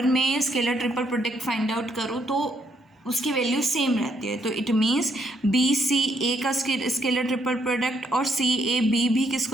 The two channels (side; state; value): both; normal; correlation 0.73